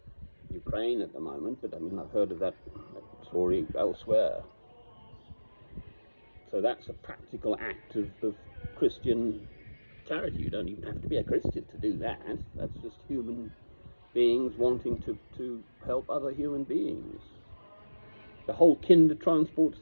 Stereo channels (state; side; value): inverted; both; correlation -1.00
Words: Ukraine at the moment, but I mean, I've heard of that story elsewhere. So that's a practical act of Christian charity. You don't even have to be a Christian to do that. That's just human beings wanting to help other human beings. The whole Kindertransport